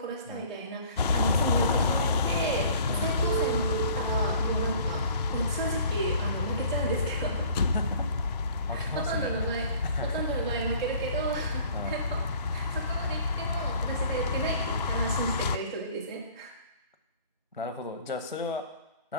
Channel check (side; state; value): both; inverted; correlation -0.51